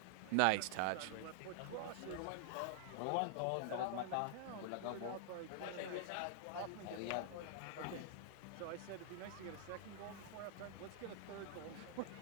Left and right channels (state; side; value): different; both; correlation -0.01